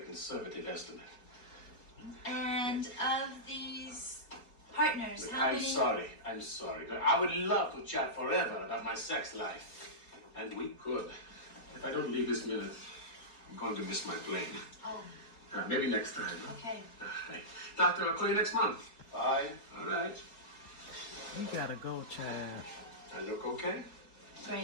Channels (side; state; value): right; late; 4.2 ms